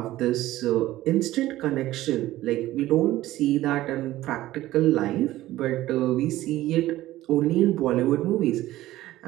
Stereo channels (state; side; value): quieter; left; 15.7 dB